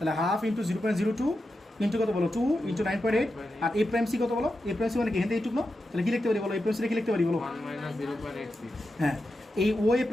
হাফ ইন্টু 0.02 ইন্টু কত বলো 2 ইন্টু 9.8, আর এ প্রাইম সি কত বলো, এ প্রাইম সি মানে কি হেনতে এইটুক না, তাহলে কি লিখতে পারি বলো, এ প্রাইম সি কি লিখতে পারি বলো, 1 minus 0.86 হ্যাঁ এই ও এ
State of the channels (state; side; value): normal; both; correlation 0.89